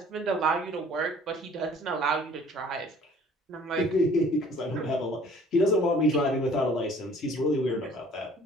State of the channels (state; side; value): normal; both; correlation 0.53